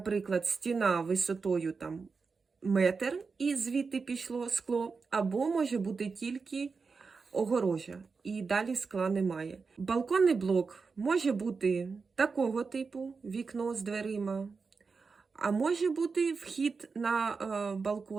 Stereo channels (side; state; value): left; quieter; 4.8 dB